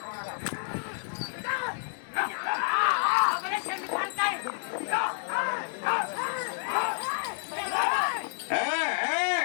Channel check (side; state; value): right; silent; digital silence